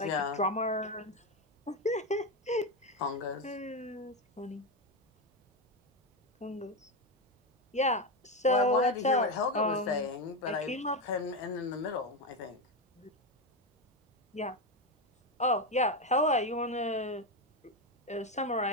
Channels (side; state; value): both; normal; correlation 0.12